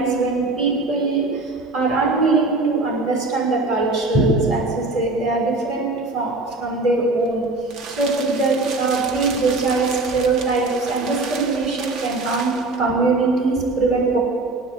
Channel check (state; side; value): quieter; left; 3.2 dB